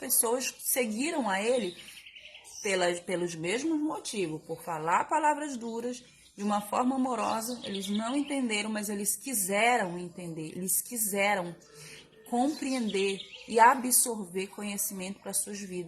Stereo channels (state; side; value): identical; both; correlation 1.00